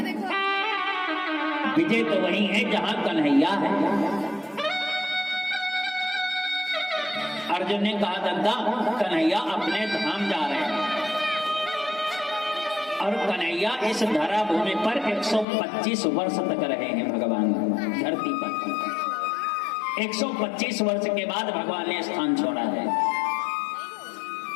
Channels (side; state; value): right; drops out; at 15.5 s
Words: विजय तो वही है जहां कन्हैया है। अर्जुन ने कहा, दत्ता कन्हैया अपने धाम जा रहे हैं और कन्हैया इस धरा भूमि पर 125 वर्ष तक रहे हैं भगवान धरती पर। 125 वर्ष के बाद भगवान ने स्थान छोड़ा है।